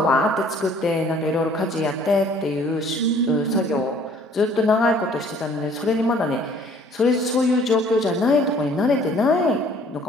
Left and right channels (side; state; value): both; normal; correlation 0.56